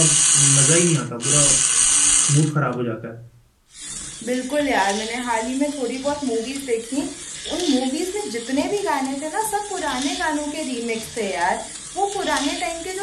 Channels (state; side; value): identical; both; correlation 1.00